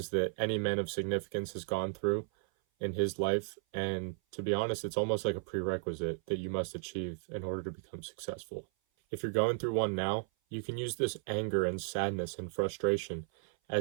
that any man of significance has gone through in his life. And to be honest, it's almost like a prerequisite that you must achieve in order to become successful. If you're going through one now, you can use this anger and sadness and frustration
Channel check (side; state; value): left; silent; 55 dB below the other